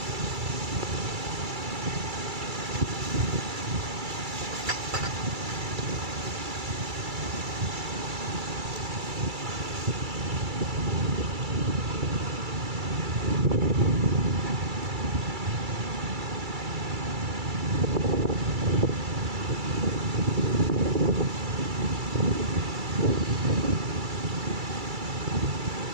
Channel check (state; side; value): late; left; 2.3 ms